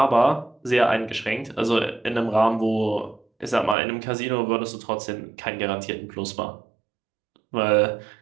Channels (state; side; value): drops out; left; at 3.8 s